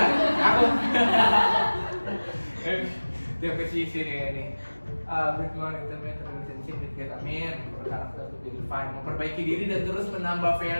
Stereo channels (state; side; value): inverted; both; correlation -1.00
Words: Aku JPCC nih ini. Build more intimate relationship with God. Amin. For character to be refined. Memperbaiki diri dan terus menambah